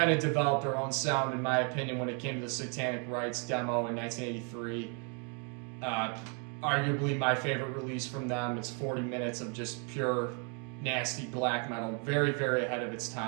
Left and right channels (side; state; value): left; quieter; 38.0 dB